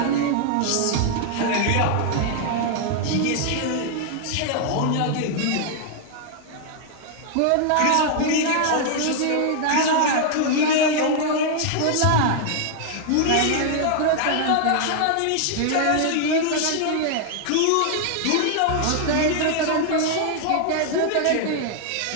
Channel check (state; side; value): different; both; correlation 0.00